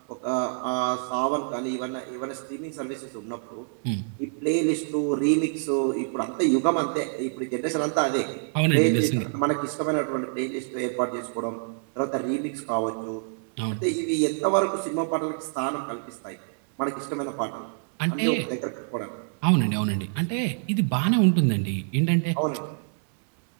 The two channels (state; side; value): silent; left; digital silence